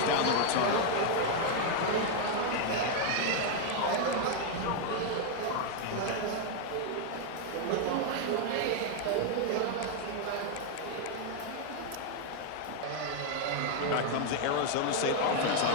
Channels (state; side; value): different; both; correlation 0.00